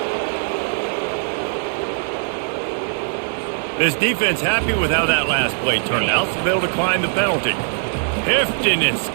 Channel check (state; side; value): silent; left; digital silence